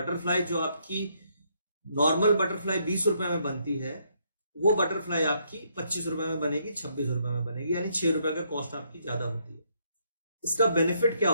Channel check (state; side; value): inverted; both; correlation -0.73